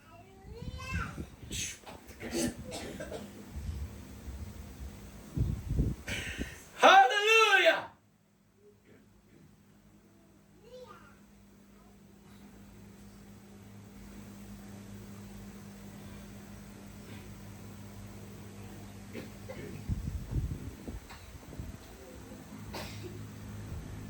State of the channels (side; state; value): both; identical; correlation 1.00